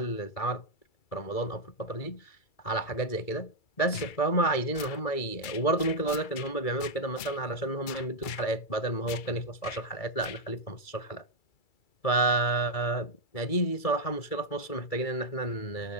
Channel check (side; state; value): right; late; 2.3 ms